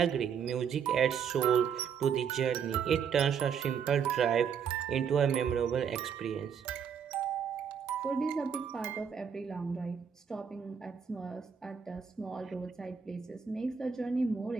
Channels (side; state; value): left; quieter; 7.2 dB